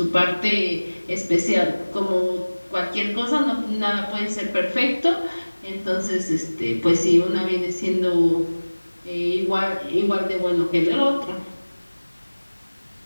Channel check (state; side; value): inverted; both; correlation -1.00